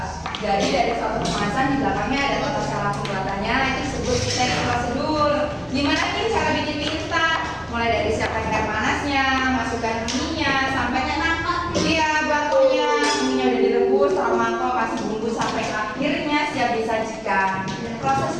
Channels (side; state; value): both; identical; correlation 1.00